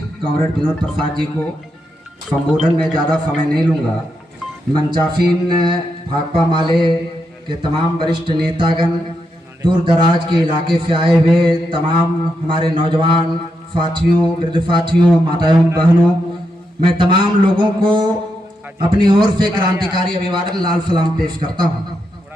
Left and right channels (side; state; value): both; normal; correlation 0.83